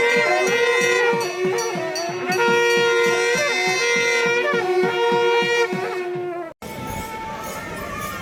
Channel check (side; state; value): both; identical; correlation 1.00